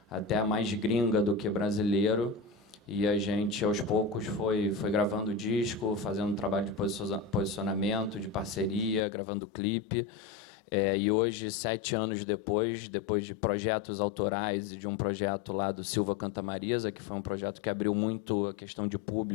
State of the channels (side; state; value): right; drops out; at 9.0 s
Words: até mais gringa do que brasileiro. E a gente, aos poucos, foi gravando disco, fazendo um trabalho de posicionamento, de parceria, gravando clipe. E hoje, 7 anos depois de projetos autorais e de um projeto lá do Silva Canta Marisa, que foi um projeto que abriu muito a questão de